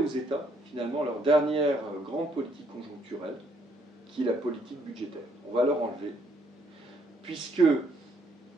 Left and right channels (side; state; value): both; normal; correlation 0.68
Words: États, finalement, leur dernière grande politique conjoncturelle, qui est la politique budgétaire. On va leur enlever, puisque,